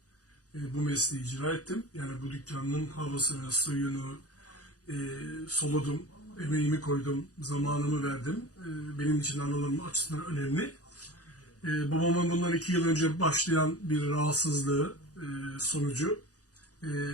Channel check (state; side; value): late; right; 0.67 ms